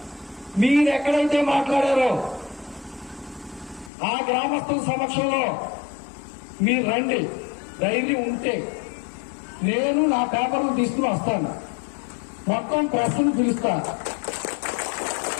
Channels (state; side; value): drops out; right; at 3.9 s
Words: మీరు ఎక్కడైతే మాట్లాడారో ఆ గ్రామస్తుల సమక్షంలో మీరు రండి, ధైర్యం ఉంటే నేను నా పేపర్లు తీసుకుని వస్తాను, మొత్తం ప్రెస్ను పిలుస్తాను.